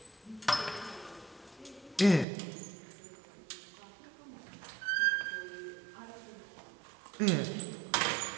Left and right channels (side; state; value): left; drops out; at 2.2 s